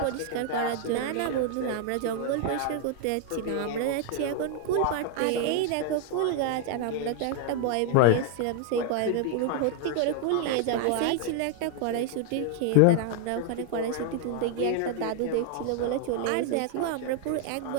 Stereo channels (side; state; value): both; different; correlation 0.00